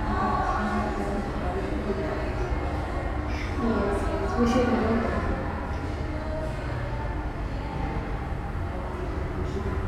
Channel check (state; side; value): identical; both; correlation 1.00